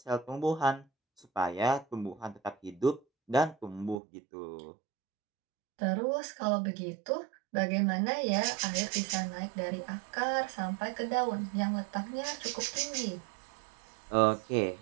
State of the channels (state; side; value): drops out; left; at 4.0 s